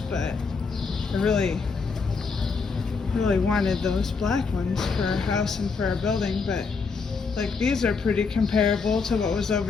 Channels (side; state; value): right; quieter; 4.9 dB